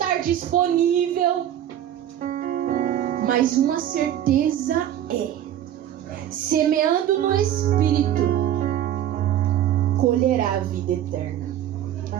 disponível. Mas uma certeza é: semeando no Espírito, colherá a vida eterna.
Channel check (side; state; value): left; quieter; 11.2 dB